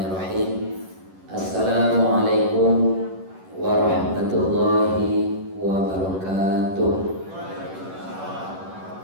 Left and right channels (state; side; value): late; left; 11 ms